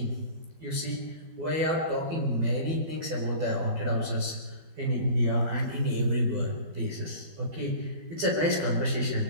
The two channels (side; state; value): left; late; 12 ms